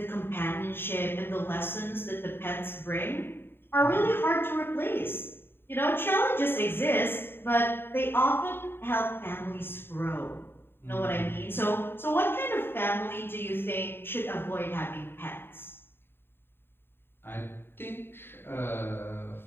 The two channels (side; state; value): right; late; 0.11 ms